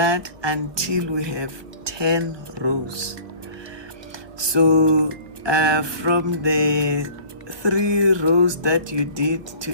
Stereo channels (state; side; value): late; left; 1.0 ms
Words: until we have 10 rows. So from the 3 rows that you did